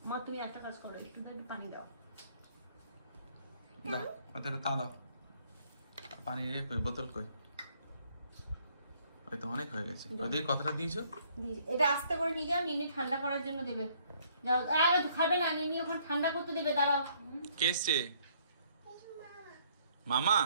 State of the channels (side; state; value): both; inverted; correlation -0.65